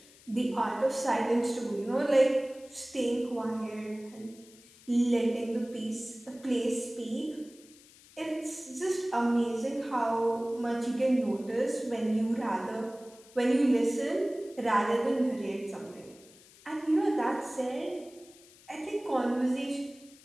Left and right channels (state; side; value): noise; left; hiss, 24 dB below the sound